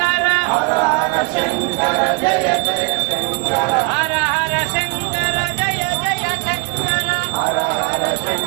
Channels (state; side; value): quieter; left; 30.4 dB